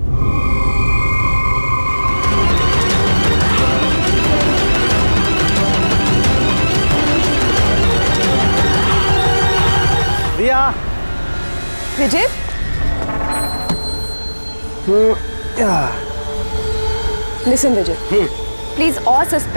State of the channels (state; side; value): inverted; both; correlation -1.00